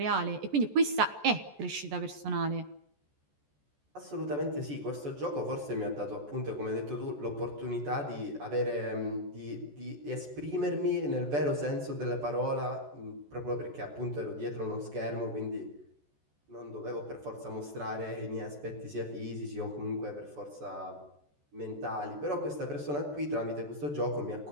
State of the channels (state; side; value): late; left; 14 ms